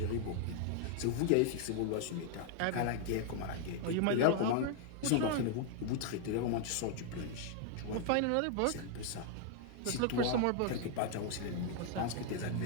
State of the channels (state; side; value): different; both; correlation 0.00